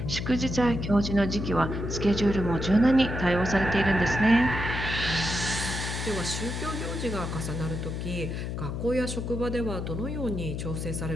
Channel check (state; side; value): noise; left; hum, 4 dB below the sound